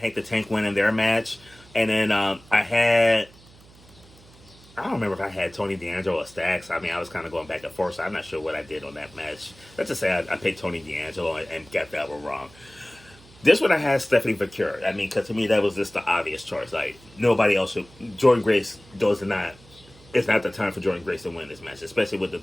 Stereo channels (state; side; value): noise; right; hum, 24 dB below the sound